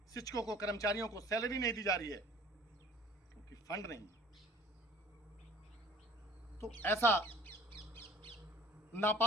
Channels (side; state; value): both; normal; correlation 0.50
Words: शिक्षकों को, कर्मचारियों को सैलरी नहीं दी जा रही है क्योंकि फंड नहीं। तो ऐसा